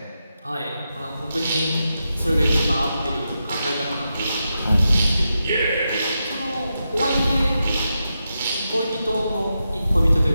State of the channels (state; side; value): inverted; both; correlation -0.87